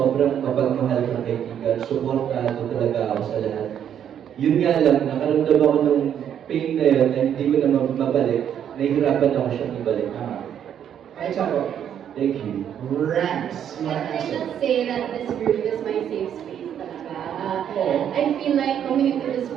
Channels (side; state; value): left; quieter; 9.3 dB